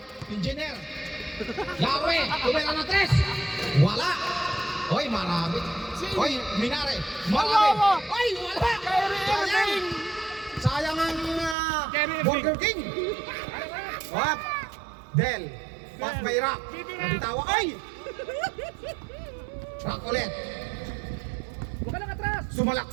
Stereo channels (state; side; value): drops out; left; at 11.6 s